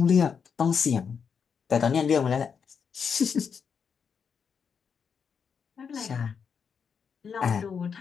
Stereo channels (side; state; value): right; quieter; 6.5 dB